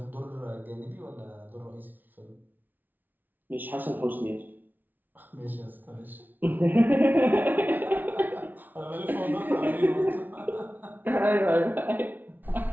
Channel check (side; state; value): left; late; 0.085 ms